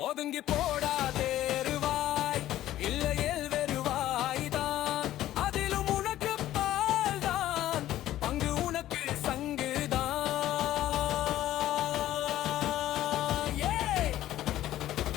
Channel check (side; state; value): right; quieter; 13.7 dB